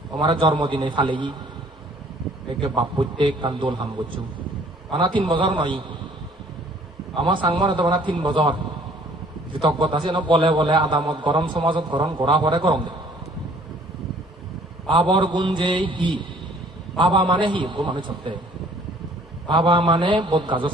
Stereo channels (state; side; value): normal; both; correlation 0.57